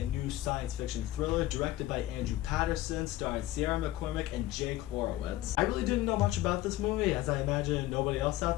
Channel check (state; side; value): quieter; right; 15.4 dB